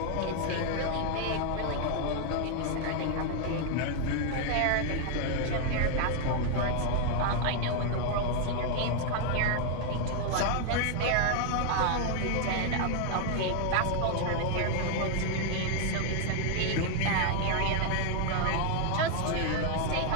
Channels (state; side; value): different; both; correlation 0.00